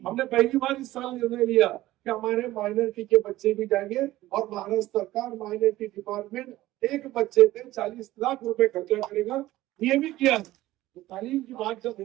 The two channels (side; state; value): left; quieter; 16.2 dB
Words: पहली बार इस साल निर्णय लिया कि हमारे माइनॉरिटी के बच्चे भी जाएंगे और महाराष्ट्र सरकार माइनॉरिटी डिपार्टमेंट एक बच्चे पे 40 लाख रुपए खर्चा करेगा। ये भी किया। तो तालीम की बात जब